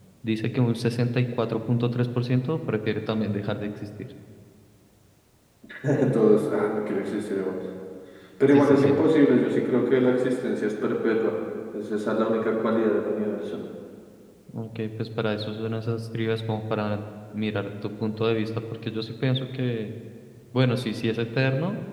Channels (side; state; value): both; identical; correlation 1.00